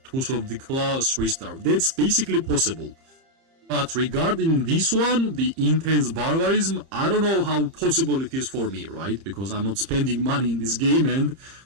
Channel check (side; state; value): left; late; 30 ms